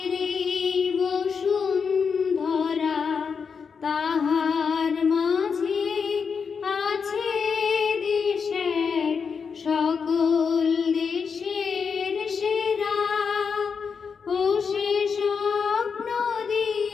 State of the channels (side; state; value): right; quieter; 5.9 dB